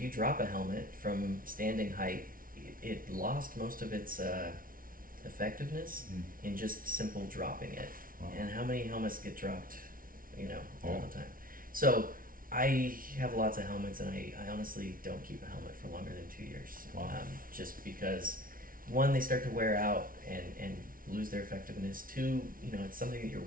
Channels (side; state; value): left; late; 0.41 ms